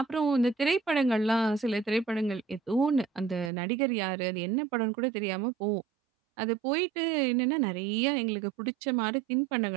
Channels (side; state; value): left; drops out; at 3.5 s